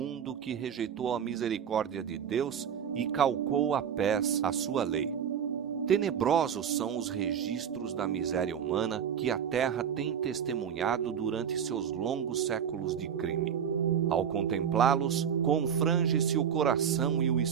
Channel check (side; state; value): left; quieter; 8.2 dB